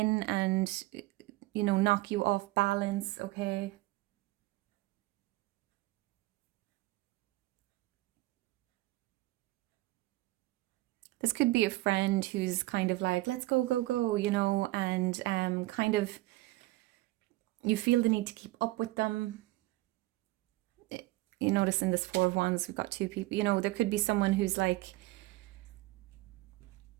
and, you know, knock you off balance, okay? This could be a friend who's kind of like, let's go, go, go, you know, and kind of you feel the need to keep up with them. You notice in this Four of Wands, we've got two people, you know, there could be someone who's like,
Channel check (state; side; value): quieter; left; 19.3 dB